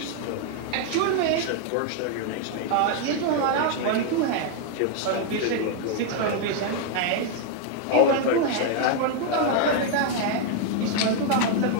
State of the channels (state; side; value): different; both; correlation 0.00